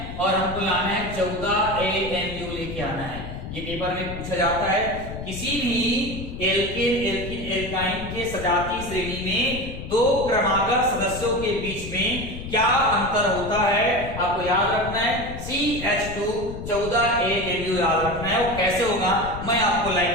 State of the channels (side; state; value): left; noise; rumble, 9 dB below the sound